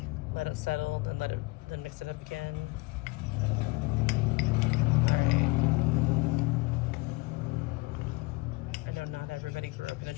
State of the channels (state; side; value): quieter; right; 24.3 dB